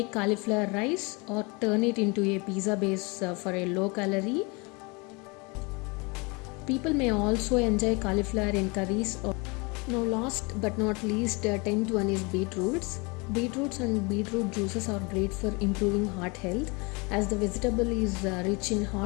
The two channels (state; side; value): quieter; right; 28.7 dB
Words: cauliflower rice or turn it into a pizza base for a low calorie. People may also enjoy cauliflower in curries. Now last but not least, 10th one is beetroots. Beetroots and beetroot juices are great for improving heart health as the vegetable is rich in